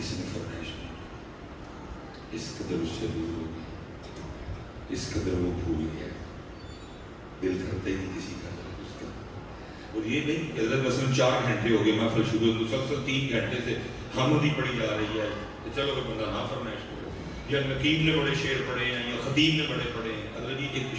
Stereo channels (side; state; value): both; identical; correlation 1.00